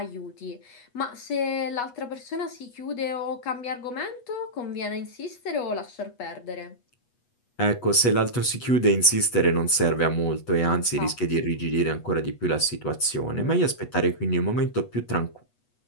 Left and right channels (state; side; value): late; right; 8.2 ms